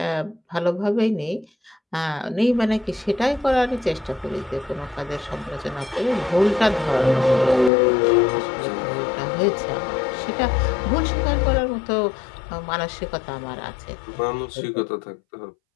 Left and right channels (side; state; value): right; drops out; at 7.7 s